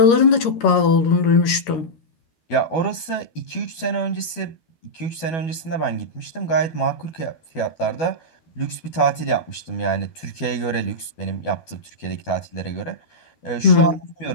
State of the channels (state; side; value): late; right; 12 ms